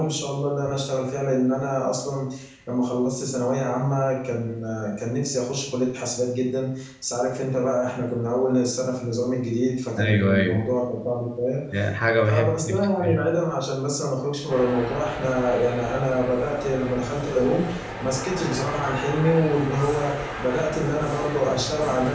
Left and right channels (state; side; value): identical; both; correlation 1.00